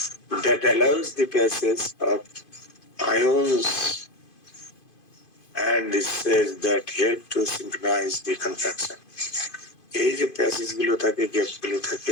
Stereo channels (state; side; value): late; right; 2.5 ms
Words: That allows the passage of ions and it says that help to synchronize the contraction. এই যে প্যাসেজ গুলো থাকে, গ্যাপ গুলো থাকে